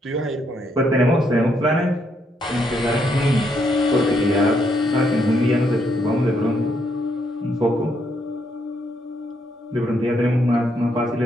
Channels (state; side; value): normal; both; correlation 0.75